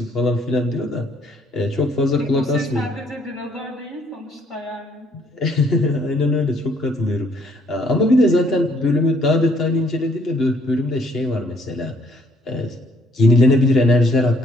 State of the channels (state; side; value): normal; both; correlation 0.65